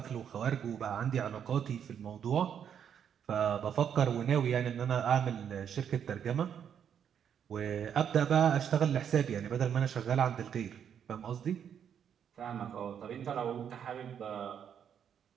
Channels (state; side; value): quieter; left; 8.4 dB